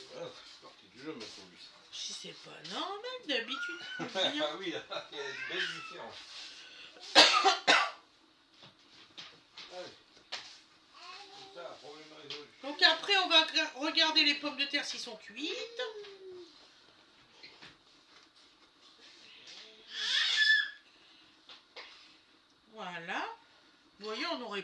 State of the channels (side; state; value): both; identical; correlation 1.00